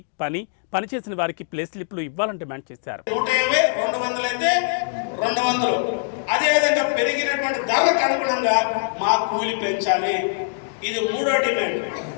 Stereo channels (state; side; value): silent; right; digital silence